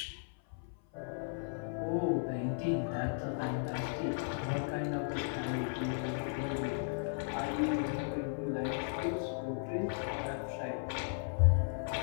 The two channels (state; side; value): silent; right; 54 dB below the other